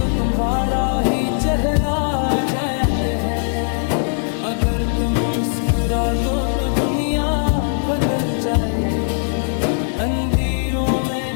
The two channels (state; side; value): silent; right; digital silence